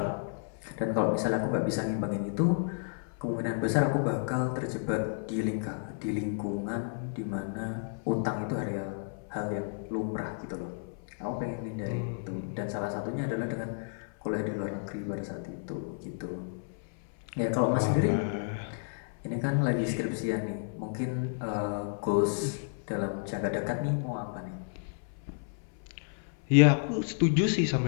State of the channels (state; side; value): silent; right; 57 dB below the other